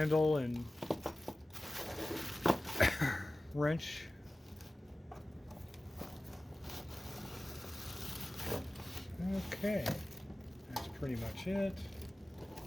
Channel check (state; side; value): normal; both; correlation 0.97